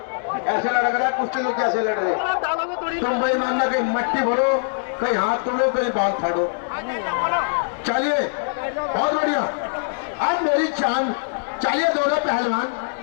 ऐसे लड़ रहा है कुश्ती, तो कैसे लड़ रहे? तुम बेईमान ना, कहीं मट्टी भरो, कहीं हाथ तोड़ो, कहीं बाल फाड़ो। चलिए, बहुत बढ़िया, आज मेरी जान। चलिए, दोनों पहलवान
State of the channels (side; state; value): right; silent; 64 dB below the other